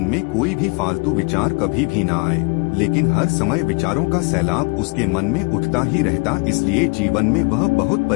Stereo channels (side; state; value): right; quieter; 31.2 dB